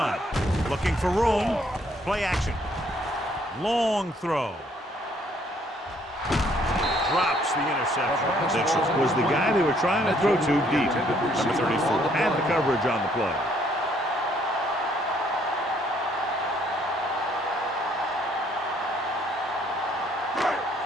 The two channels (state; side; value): normal; both; correlation 0.66